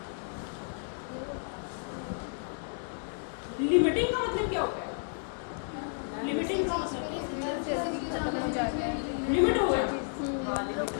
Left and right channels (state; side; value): silent; right; 57 dB below the other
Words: लिमिटिंग का मतलब क्या होता है? लिमिटिंग का मतलब लिमिट हो गया